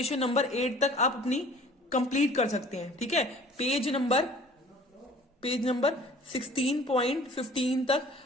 8 तक आप अपनी कंप्लीट कर सकते हैं। ठीक है, पेज नंबर 16.15 तक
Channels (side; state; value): both; normal; correlation 0.50